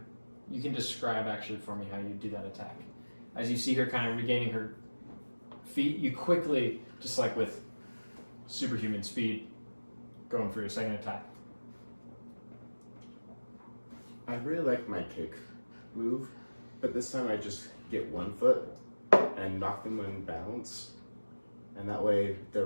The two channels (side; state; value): both; inverted; correlation -1.00